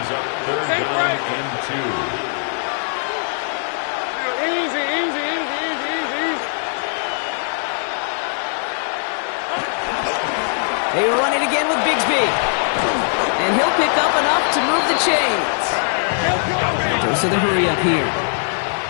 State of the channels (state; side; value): silent; right; 61 dB below the other